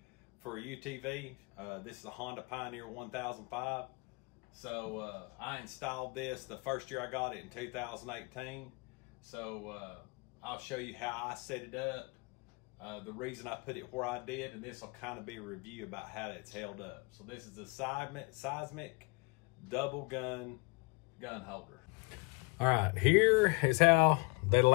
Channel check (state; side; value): quieter; right; 29.3 dB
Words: for UTV. This is a Honda Pioneer 1005. So I installed this the first year I got it in 2018. So I'll show you how I set it up, the reason I put it where I did, and this will kind of be a review about how it's held up. So this is the Seizmik double gun holder. All right, here is how they